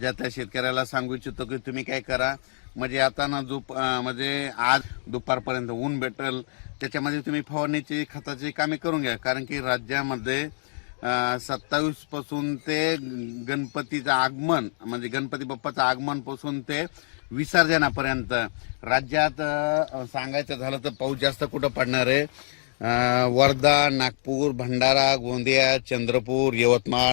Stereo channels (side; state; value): right; silent; digital silence